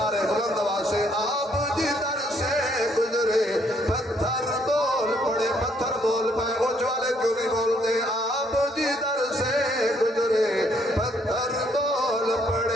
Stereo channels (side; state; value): both; normal; correlation 0.68